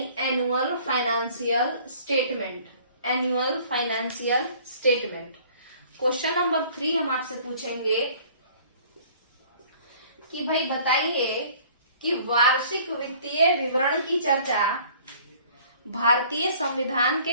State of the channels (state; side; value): inverted; both; correlation -0.53